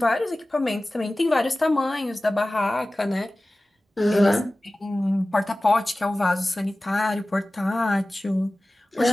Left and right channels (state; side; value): normal; both; correlation 0.97